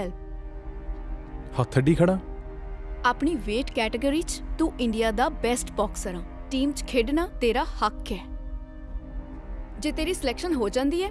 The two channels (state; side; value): identical; both; correlation 1.00